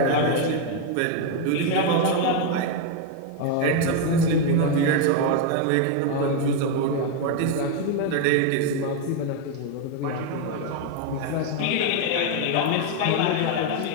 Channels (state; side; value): different; both; correlation 0.01